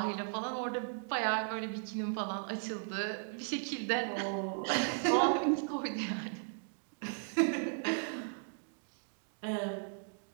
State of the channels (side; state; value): left; silent; digital silence